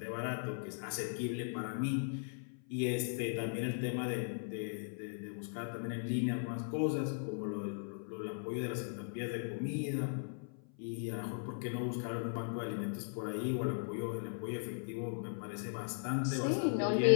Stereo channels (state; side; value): silent; right; 52 dB below the other